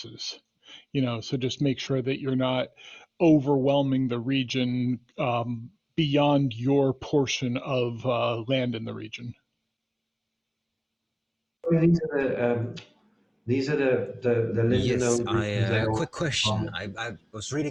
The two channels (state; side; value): identical; both; correlation 1.00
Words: So just make sure that you're not overwhelming the region beyond your portion of land in the region. These are the Linden Yes, owned I regions. a quick question. I was